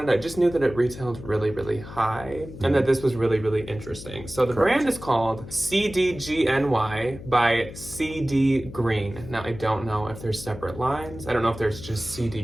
it. I just knew that it retailed really, really high and that this was really, really interesting. So the brand is called CDGNY by CD Green. Now, I don't know if there's separate lines. I don't know if there's just CD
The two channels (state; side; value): noise; left; hum, 13 dB below the sound